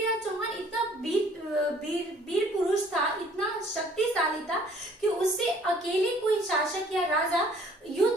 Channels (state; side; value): normal; both; correlation 0.57